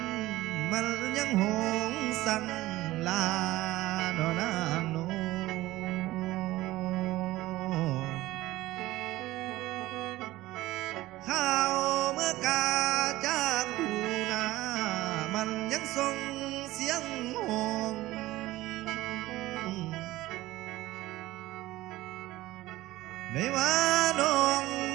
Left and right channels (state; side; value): quieter; left; 17.4 dB